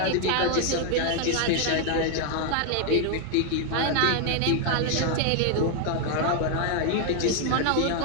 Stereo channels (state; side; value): different; both; correlation 0.01